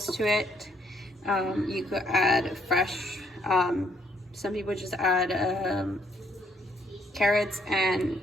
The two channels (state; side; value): normal; both; correlation 0.68